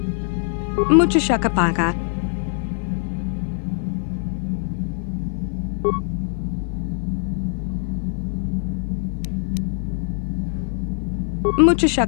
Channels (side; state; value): right; silent; 56 dB below the other